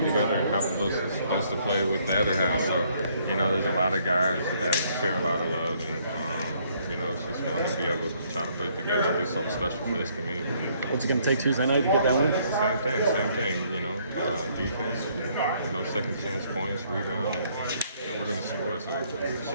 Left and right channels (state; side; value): inverted; both; correlation -0.66